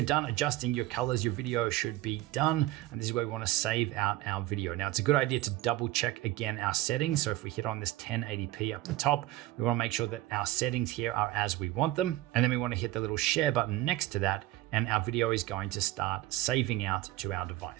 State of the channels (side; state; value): left; quieter; 16.2 dB